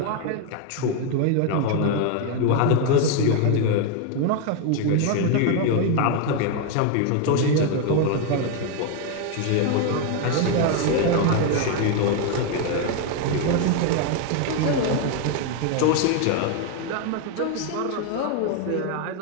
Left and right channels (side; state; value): both; different; correlation 0.01